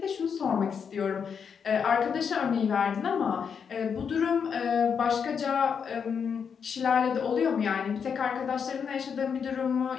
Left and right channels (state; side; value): quieter; right; 6.7 dB